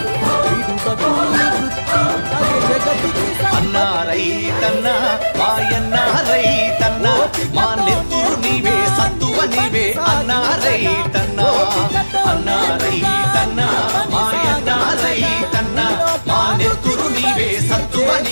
అన్నా రైతన్నా మాయన్నా రైతన్నా మా నెత్తురు నీవే సత్తువ నీవే అన్నా రైతన్నా అన్నా రైతన్నా మాయన్నా రైతన్నా మా నెత్తురు నీవే సత్తువ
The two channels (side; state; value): both; inverted; correlation -1.00